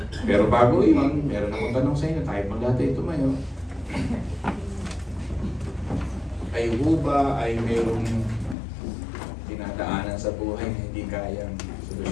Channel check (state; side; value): drops out; right; at 8.6 s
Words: Pero bago yun, meron akong tanong sa inyo. Tayo pang dati tumayo. Ay ba ay mayroong dinadaanan sa buhay na hindi kayang